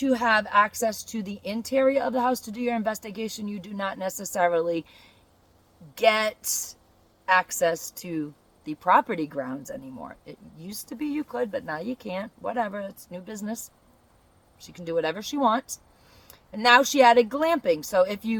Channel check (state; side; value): identical; both; correlation 1.00